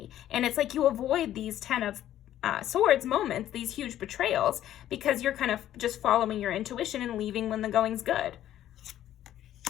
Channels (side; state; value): right; quieter; 12.2 dB